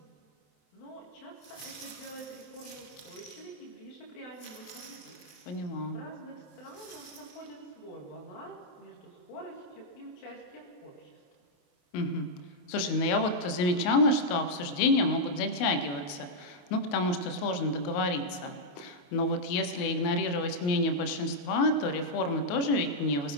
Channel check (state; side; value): late; right; 28 ms